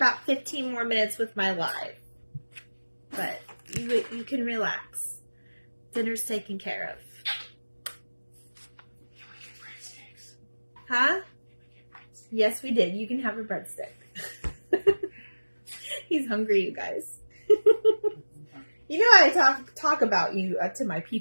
15 more minutes with my live, but you can relax. Dinner's taken care of. Huh? Yes, we did. You can have a breadstick. He's hungry, you guys. You know I talk about you to my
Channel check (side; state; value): both; inverted; correlation -1.00